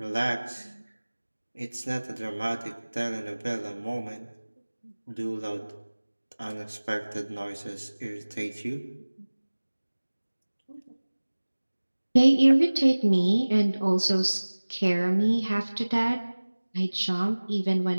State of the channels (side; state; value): both; inverted; correlation -1.00